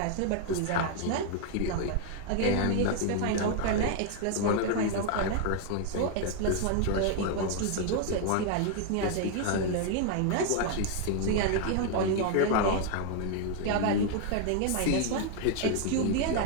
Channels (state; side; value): different; both; correlation 0.00